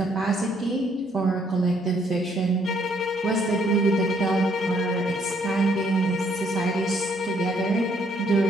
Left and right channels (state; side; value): normal; both; correlation 0.68